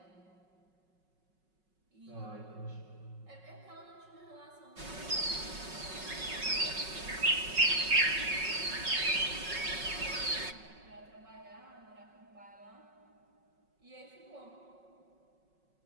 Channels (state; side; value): late; left; 5.4 ms